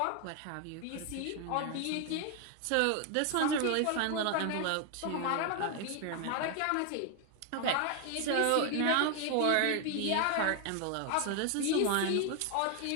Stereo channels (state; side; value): different; both; correlation 0.00